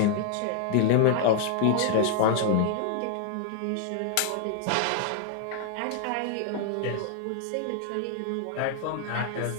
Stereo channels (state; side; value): different; both; correlation 0.00